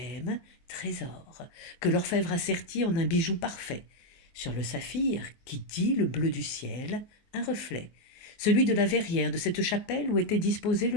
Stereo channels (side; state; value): right; late; 23 ms